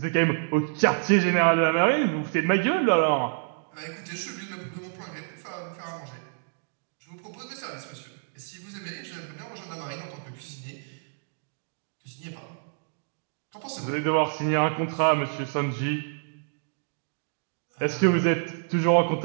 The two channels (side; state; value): left; silent; digital silence